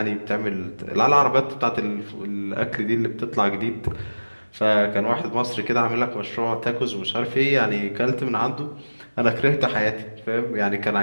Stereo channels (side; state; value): both; inverted; correlation -1.00